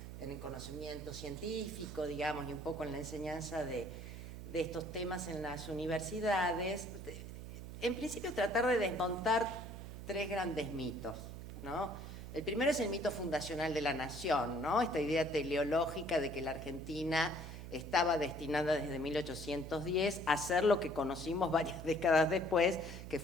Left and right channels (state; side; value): noise; right; hum, 10 dB below the sound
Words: en el conocimiento científico, digamos, y un poco en la enseñanza de estos temas en las universidades, en principio tratar de desmontar tres grandes mitos, ¿no? El primero es el mito fundacional de la nación, ¿no? Esta idea teleológica de que la Argentina estaba destinada desde 1810 a ser lo que conocimos varias décadas después, que